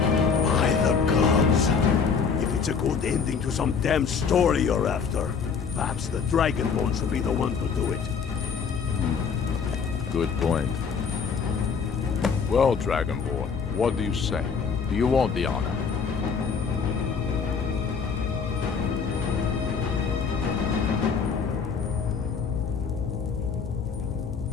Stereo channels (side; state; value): right; quieter; 5.9 dB